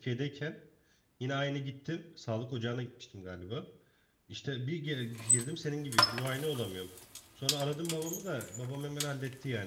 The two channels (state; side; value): identical; both; correlation 1.00